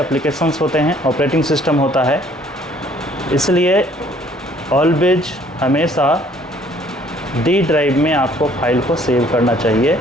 होते हैं, ऑपरेटिंग सिस्टम होता है। इसलिए ऑलवेज हमेशा डी ड्राइव में आपको फाइल को सेव करना चाहिए।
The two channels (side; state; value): both; normal; correlation 0.59